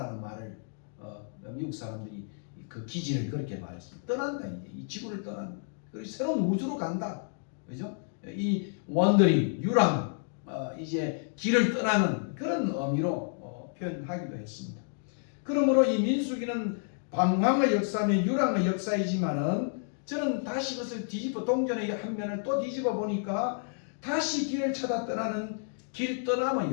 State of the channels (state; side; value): silent; right; digital silence